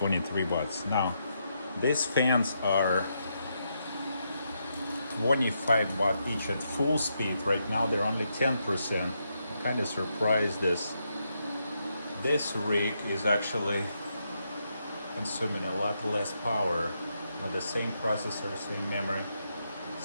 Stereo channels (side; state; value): both; inverted; correlation -0.81